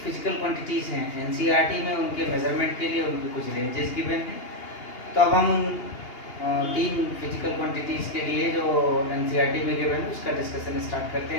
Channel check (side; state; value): right; late; 2.8 ms